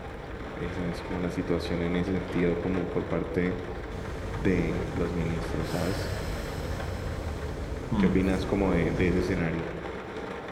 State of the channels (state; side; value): identical; both; correlation 1.00